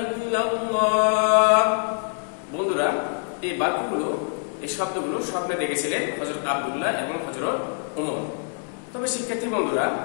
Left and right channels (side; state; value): right; silent; 62 dB below the other